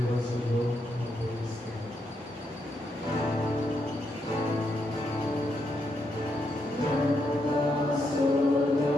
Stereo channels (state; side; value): normal; both; correlation 0.80